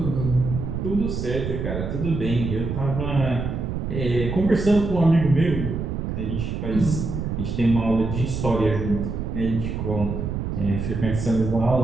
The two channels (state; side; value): noise; right; rumble, 3 dB below the sound